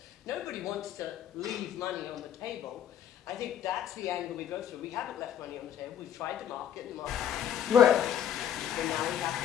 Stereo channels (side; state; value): right; quieter; 9.9 dB